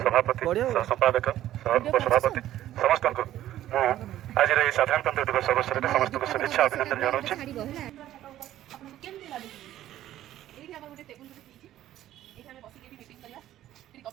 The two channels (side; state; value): left; quieter; 13.0 dB